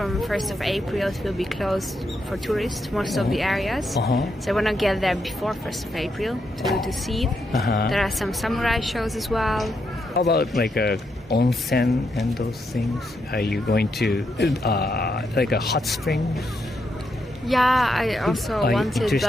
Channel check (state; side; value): normal; both; correlation 0.81